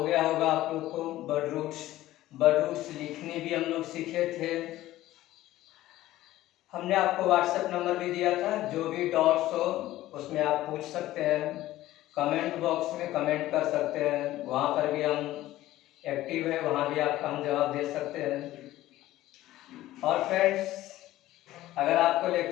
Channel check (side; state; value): right; quieter; 15.4 dB